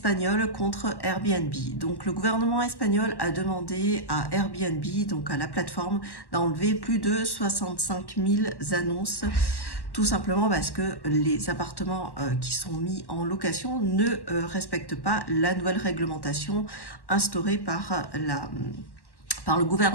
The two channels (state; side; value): late; right; 1.1 ms